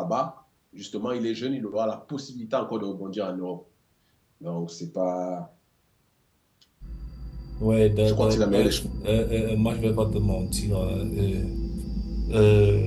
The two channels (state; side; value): identical; both; correlation 1.00